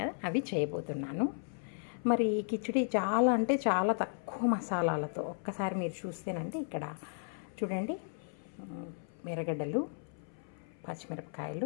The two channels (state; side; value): silent; right; 55 dB below the other